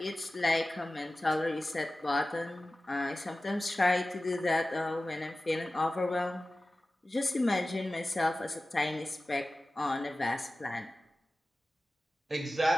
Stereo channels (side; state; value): both; normal; correlation 0.96